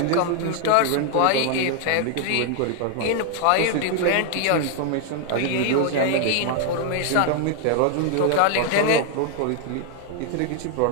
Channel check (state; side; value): different; both; correlation 0.00